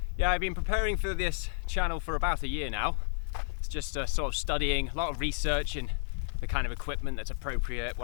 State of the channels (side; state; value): right; silent; digital silence